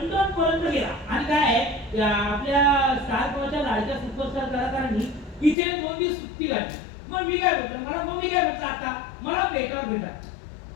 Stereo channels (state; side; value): drops out; right; at 5.6 s